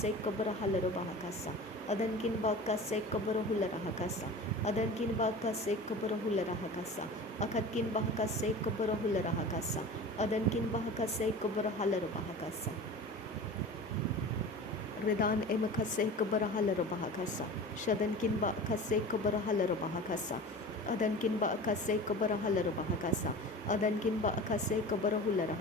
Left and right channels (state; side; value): normal; both; correlation 0.35